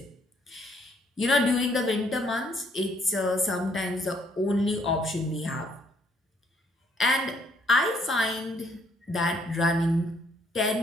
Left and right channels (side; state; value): both; normal; correlation 0.67